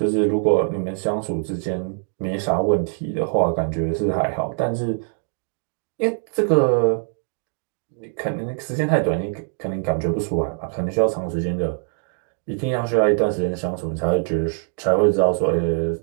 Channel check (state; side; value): silent; left; 59 dB below the other